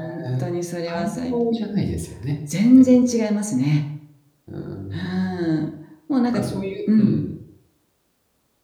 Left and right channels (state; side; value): identical; both; correlation 1.00